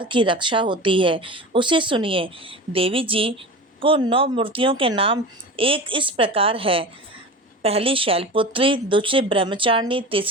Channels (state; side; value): normal; both; correlation 0.32